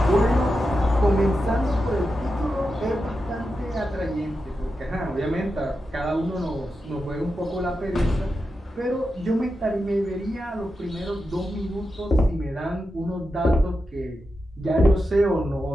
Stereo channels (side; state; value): both; normal; correlation 0.89